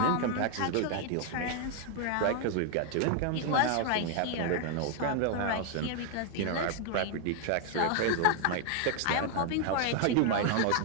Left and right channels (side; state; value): both; different; correlation 0.00